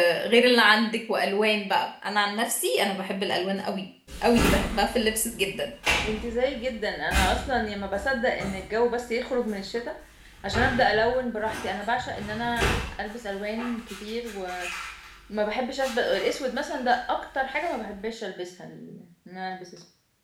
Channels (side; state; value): both; identical; correlation 1.00